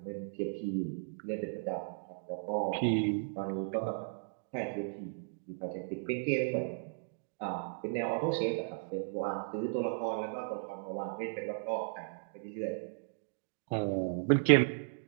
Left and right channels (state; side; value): silent; left; digital silence